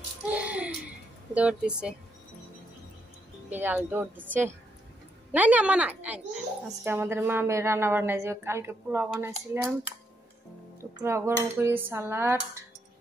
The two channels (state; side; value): normal; both; correlation 0.78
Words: দৌড় দিছে, বিড়াল দৌড় দিচ্ছে। নাই না মা নাই। আজকে আমাদের মা মেয়ে রান্না বান্নায়, যে কালকে পোলাও বানাইছিলাম, তো পোলাও গরম করি, সালাড,